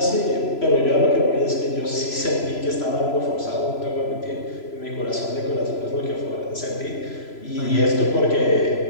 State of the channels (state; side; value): late; right; 3.0 ms